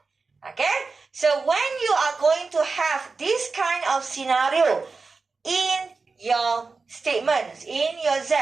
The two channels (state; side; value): quieter; left; 4.3 dB